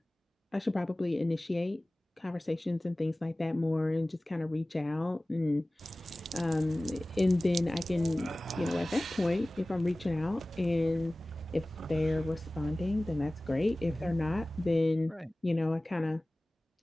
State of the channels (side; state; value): both; normal; correlation 0.98